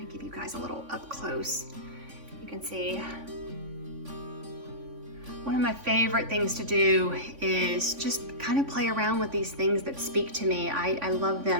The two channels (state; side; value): late; left; 3.5 ms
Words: of give you guys a little up close. You can see one of my favorite things to do is just kind of play around with these things that speak to me. I love